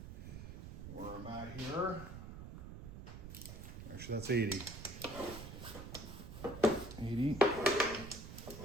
where I'm at here. Actually, that's 80. 80.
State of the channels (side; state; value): right; noise; rumble, 10 dB below the sound